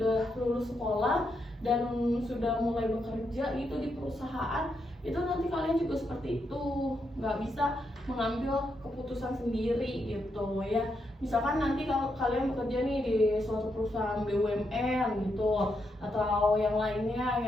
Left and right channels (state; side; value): normal; both; correlation 0.81